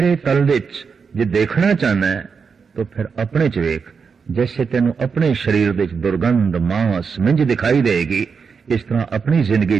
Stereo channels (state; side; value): quieter; left; 5.7 dB